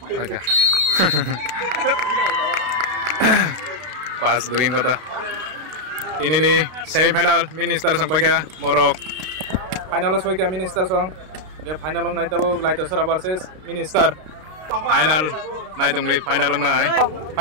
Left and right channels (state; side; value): late; left; 32 ms